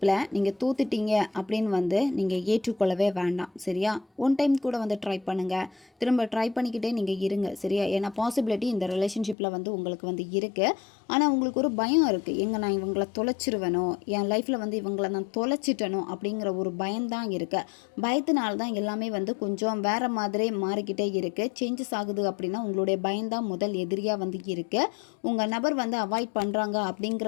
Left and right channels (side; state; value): right; drops out; at 9.3 s